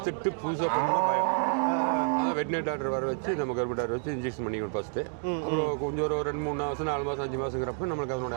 புதுசாக பண்ணால் பயம். அதான் வெட்டினரி டாக்டர் வர வச்சு நம்ம கருப்பு டாக்டர் வச்சு இன்ஜெக்ஷன் பண்ணிக்கணும் ஃபஸ்ட்டு. அப்புறம் கொஞ்சம் ஒரு 2-3 மாதம் 4 மாதம் 5 மாதங்கிறப்ப நம்மளுக்கு அதனோட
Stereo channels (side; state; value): left; silent; 58 dB below the other